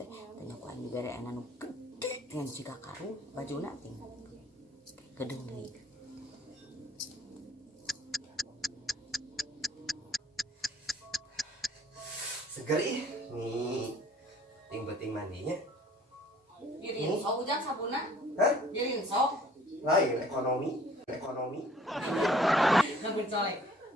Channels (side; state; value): both; normal; correlation 0.55